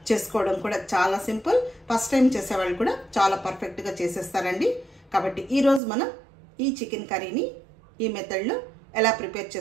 చేసుకోవడం కూడా చాలా సింపుల్. ఫస్ట్ టైం చేసేవాళ్ళు కూడా చాలా పర్ఫెక్ట్ గా చేసేస్తారండి. కాబట్టి ఈ రోజు మనం ఈ చికెన్ కర్రీని ఈ మెథడ్లో ఎలా ప్రిపేర్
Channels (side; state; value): left; drops out; at 5.8 s